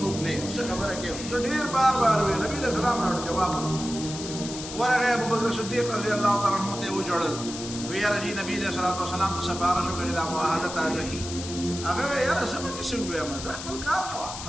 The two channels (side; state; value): left; noise; hiss, 9 dB below the sound